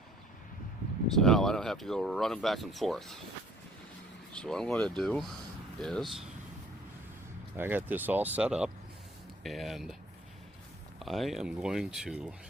So now I don't have to go running back and forth. So what I'm going to do is I got this all set up, and I am going to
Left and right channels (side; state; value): both; normal; correlation 0.57